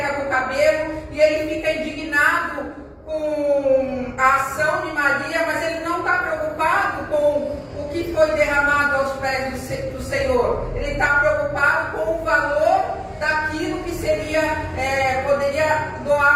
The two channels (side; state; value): both; identical; correlation 1.00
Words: com o cabelo, e ele fica indignado com a ação de Maria, mas ele não está preocupado com o que foi derramado aos pés do Senhor. Ele está preocupado com o valor daquilo que poderia